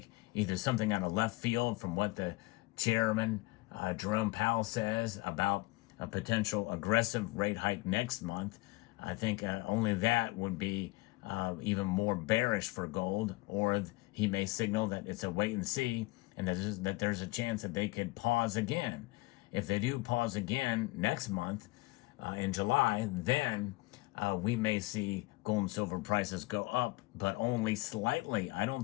either something out of left field from what the chairman, Jerome Powell, says about a potential aggressive rate hike next month. I think only that would be even more bearish for gold, or he may signal that it's a wait and see, and that there's a chance that they could pause again. If they do pause again next month in July, then we may see gold and silver prices go up, but only slightly. I don't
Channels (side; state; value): right; quieter; 22.1 dB